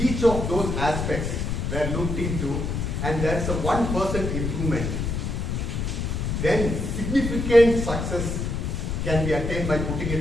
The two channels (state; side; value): noise; left; rumble, 2 dB below the sound